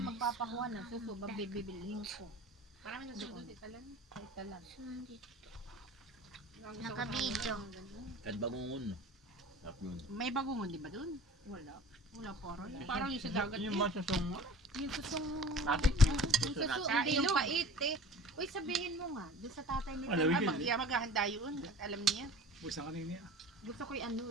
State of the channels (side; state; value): both; normal; correlation 0.43